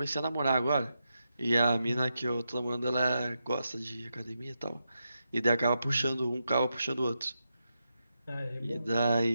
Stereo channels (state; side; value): inverted; both; correlation -0.87